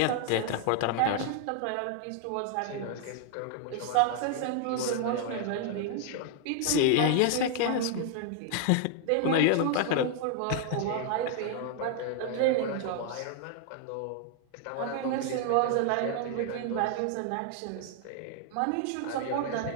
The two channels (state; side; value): different; both; correlation 0.00